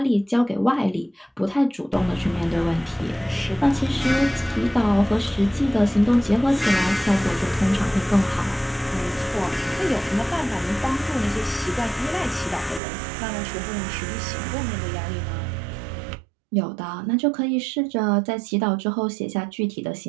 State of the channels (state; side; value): drops out; left; at 12.8 s